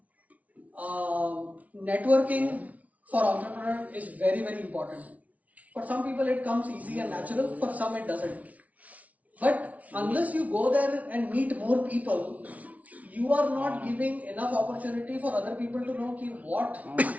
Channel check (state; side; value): late; left; 0.069 ms